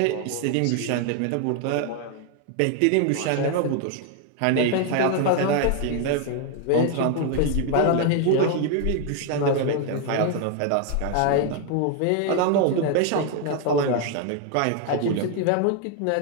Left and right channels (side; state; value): both; different; correlation 0.01